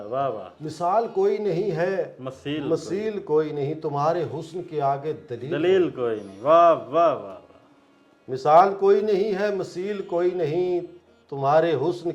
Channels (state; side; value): identical; both; correlation 1.00